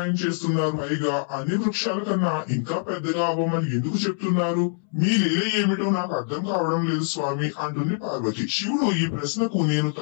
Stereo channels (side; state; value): right; silent; 62 dB below the other